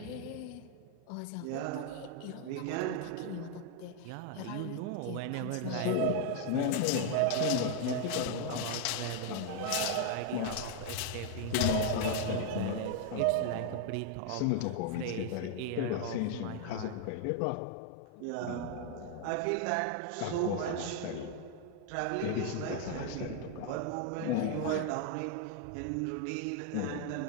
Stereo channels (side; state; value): both; different; correlation 0.00